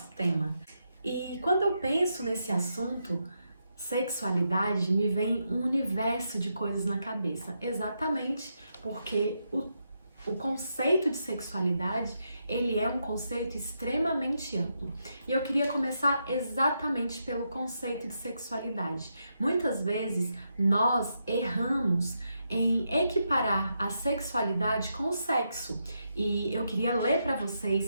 tema. E quando eu penso nesse assunto, sexualidade, me vem um universo de coisas na cabeça, exatamente porque o conceito de sexualidade, ele é um conceito extremamente amplo. E eu queria começar exatamente pelo conceito de sexualidade. Muitas vezes nós erramos em equiparar a sexualidade com o sexo. E eu queria ler para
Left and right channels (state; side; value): inverted; both; correlation -0.83